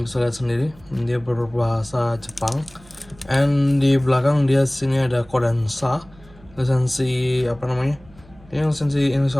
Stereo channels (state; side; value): noise; right; hum, 25 dB below the sound